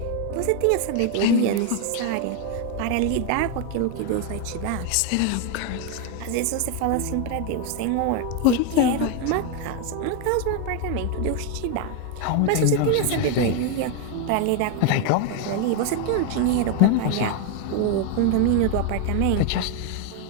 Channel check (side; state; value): both; different; correlation 0.01